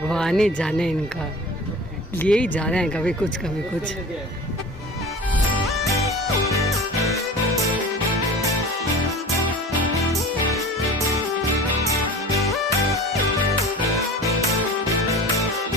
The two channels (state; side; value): normal; both; correlation 0.38